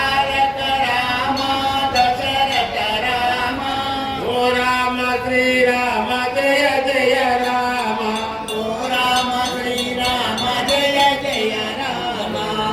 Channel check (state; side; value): identical; both; correlation 1.00